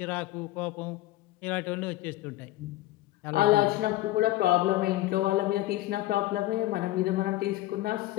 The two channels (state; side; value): quieter; right; 16.4 dB